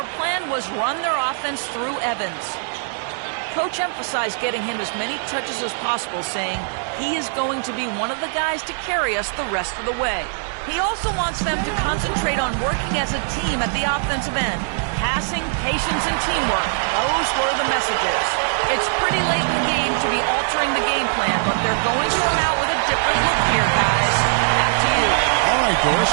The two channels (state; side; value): silent; left; digital silence